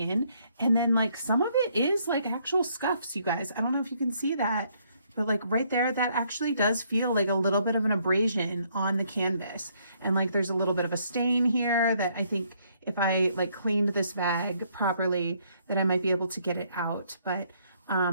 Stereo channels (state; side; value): inverted; both; correlation -0.69